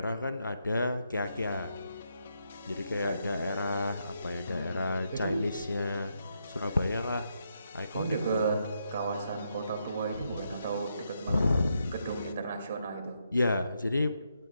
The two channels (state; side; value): inverted; both; correlation -0.80